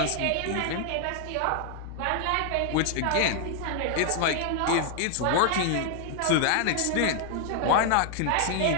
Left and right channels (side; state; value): both; different; correlation 0.00